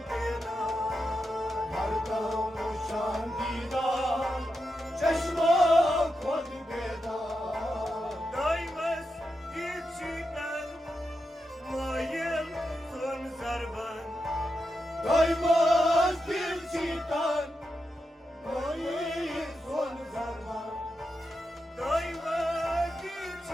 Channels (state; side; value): normal; both; correlation 0.87